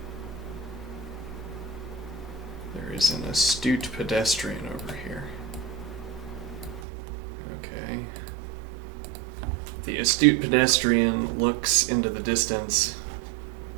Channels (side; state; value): left; drops out; at 6.9 s